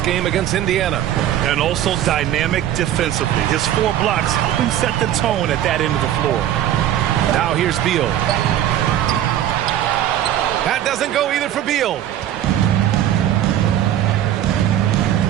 game against Indiana. And also dynamic defensively. His 4 blocks helping set the tone at that end of the floor. Now here's Beal. That doesn't go either for Beal.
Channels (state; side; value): quieter; left; 11.7 dB